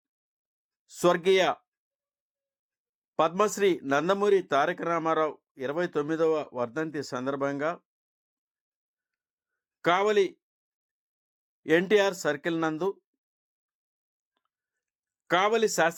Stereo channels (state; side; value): identical; both; correlation 1.00